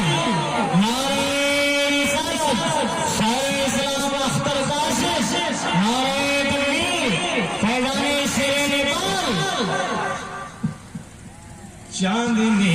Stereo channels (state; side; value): identical; both; correlation 1.00